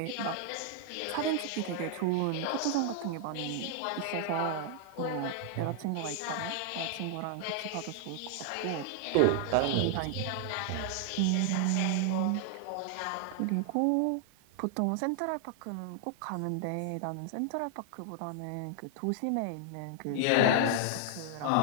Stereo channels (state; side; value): different; both; correlation 0.00